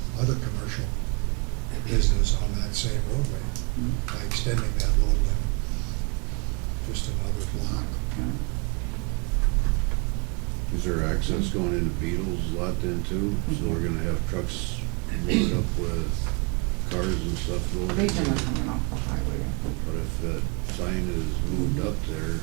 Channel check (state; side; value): quieter; left; 33.0 dB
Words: other commercial business on that same roadway by extending that load limit just another block? Is there access going into Beatles lot then too? So we're gonna have trucks loaded up with cars and stuff going? They generally coming off the highway, I think. But if that sign is moved up there,